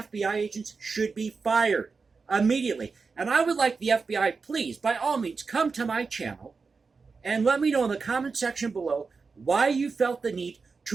agents should be fired immediately. And I would like the FBI, please, by all means, come to my channel and let me know in the comment section below why you felt the need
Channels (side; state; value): left; quieter; 4.7 dB